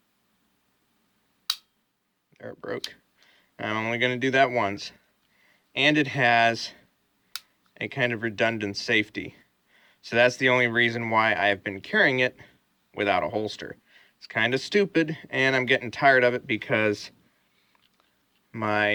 There, it broke. I'm only going to do that once. And it has a kind of redundant safety. So that's the only reason why I've been carrying it without a holster. It's kind of stupid, and I'm getting tired of it because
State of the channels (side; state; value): both; identical; correlation 1.00